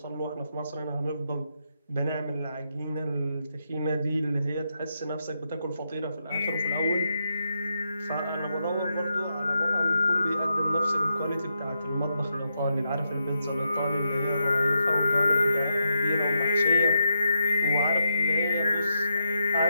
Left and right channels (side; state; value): both; inverted; correlation -0.82